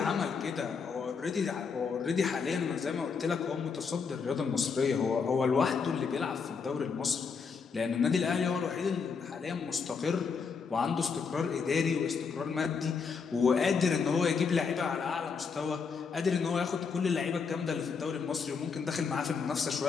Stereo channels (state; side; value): quieter; right; 5.6 dB